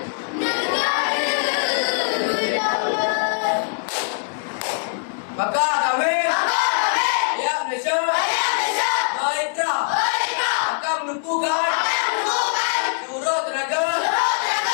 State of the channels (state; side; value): silent; right; digital silence